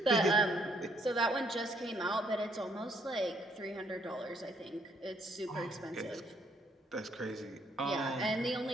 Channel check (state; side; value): normal; both; correlation 0.68